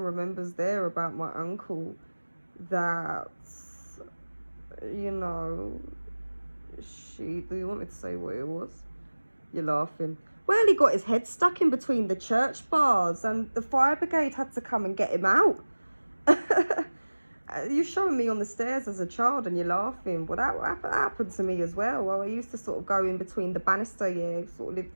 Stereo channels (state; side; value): inverted; both; correlation -1.00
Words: remembers there about my uncle that, do you want me to say what it was? You're laughing. Well, he got his head stuck in between the church bars and the fire brigade had to come and get him out. You're showing me on the stairs as a child and you're laughing. Well, that happened to me as well. I used to sort of go in between the banister, yeah, sort of lived